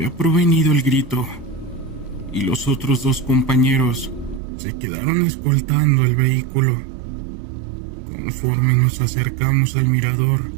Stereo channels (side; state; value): left; drops out; at 4.4 s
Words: provenido el grito, y los otros 2 compañeros se quedaron escoltando el vehículo. Conforme nos acercamos al mirador,